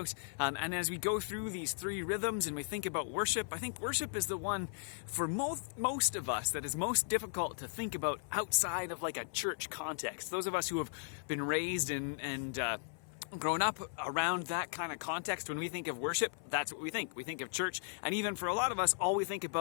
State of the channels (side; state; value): right; silent; 53 dB below the other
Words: And as we go through these three rhythms and we think about worship, I think worship is the one for most of us that is most difficult to think about outside of like a church context. Those of us who have been raised and grown up around that kind of context, when we think of worship, that's what we think. We think of church, and even for a lot of us, all we think